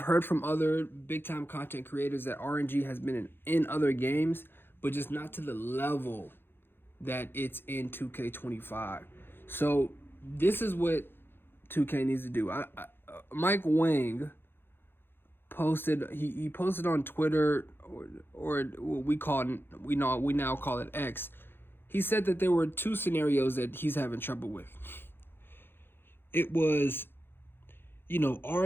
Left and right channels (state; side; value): late; right; 0.10 ms